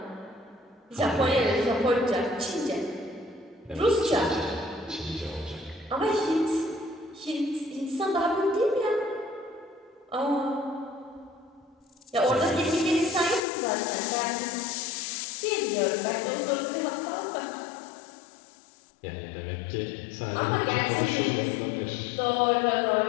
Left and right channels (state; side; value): drops out; right; at 13.4 s